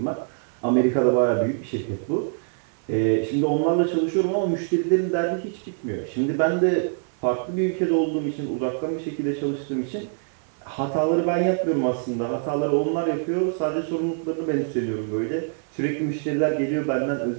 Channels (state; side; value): silent; left; 62 dB below the other